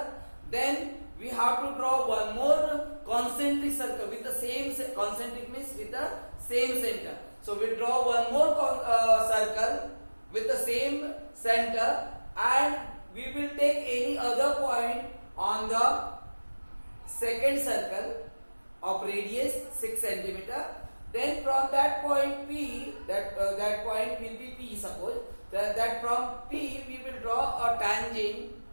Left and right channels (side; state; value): both; inverted; correlation -1.00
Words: Then we have to draw one more concentric circle with the same concentric means with the same center. So we draw one more circle with the same center, and we will take any other point on the second circle of radius 6 cm. Then from that point P, that point will be P, suppose that from P we will draw a tangent